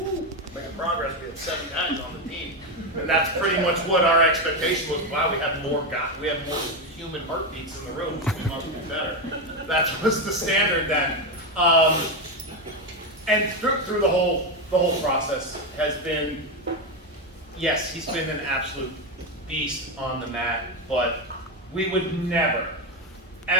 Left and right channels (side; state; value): both; normal; correlation 0.11